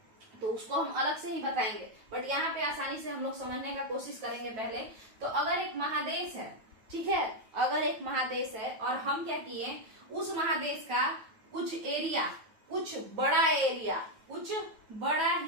तो उसको हम अलग से ही बताएंगे, बट यहाँ पे आसानी से हम लोग समझने का कोशिश करेंगे। पहले तो अगर एक महादेश है, ठीक है, अगर एक महादेश है और हम क्या किए, उस महादेश का कुछ एरिया, कुछ बड़ा एरिया, कुछ बड़ा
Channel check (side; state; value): left; late; 9.2 ms